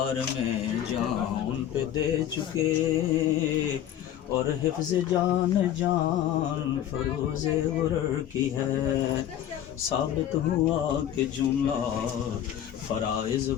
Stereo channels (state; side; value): quieter; right; 11.0 dB